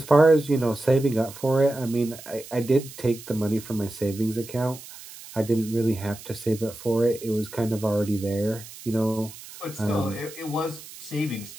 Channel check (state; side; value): noise; right; hiss, 16 dB below the sound